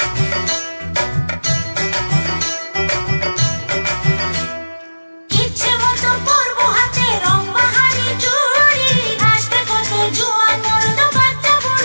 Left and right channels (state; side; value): inverted; both; correlation -1.00